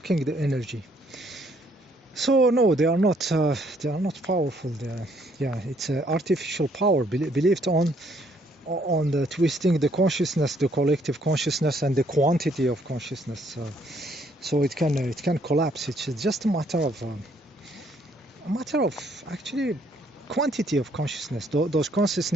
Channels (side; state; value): both; normal; correlation 0.67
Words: the energy. So no, they are not powerful. It's artificial power believed on the twisting the consciousness, the collective consciousness, and the quantity of consciousness. So it can collapse. It's just a matter of actually quantity of consciousness. Those